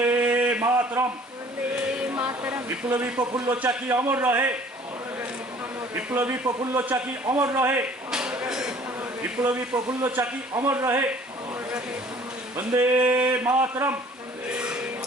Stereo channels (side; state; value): both; normal; correlation 0.53